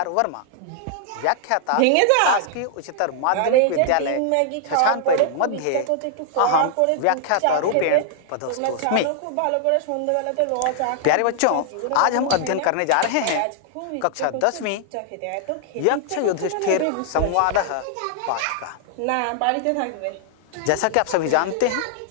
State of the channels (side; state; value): both; different; correlation -0.01